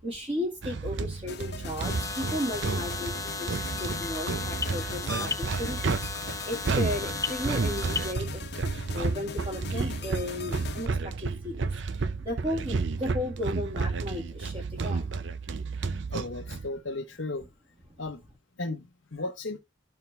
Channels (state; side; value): normal; both; correlation 0.49